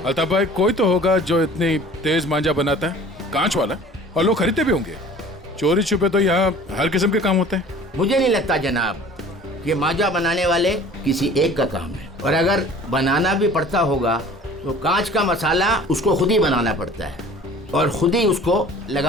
अल्ताफ भाई कोई तो होगा जो इतनी तेज मांझा बनाता है, कांच वाला, और लोग खरीदते भी होंगे। चोरी छुपे तो यहाँ हर किस्म के काम होते हैं। मुझे नहीं लगता जनाब कि मांझा बनाने वाले किसी एक का काम है, और अगर बनाना भी पड़ता होगा तो कांच का मसाला उसको खुद ही बनाना पड़ता है और खुद ही उसको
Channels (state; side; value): normal; both; correlation 0.46